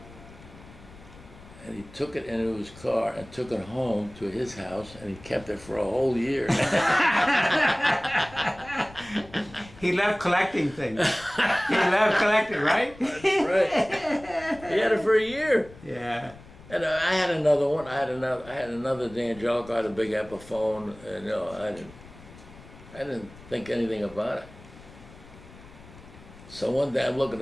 and he took it into his car and took it home to his house, and he kept it for a whole year. He loved collecting things. He loved collecting, right? That's right. He had it for a year. Yeah. And I had another one. I had another D'Angelico. I had a big Epiphone, and I didn't think anything about it. So one day I'm looking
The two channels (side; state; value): left; noise; rumble, 20 dB below the sound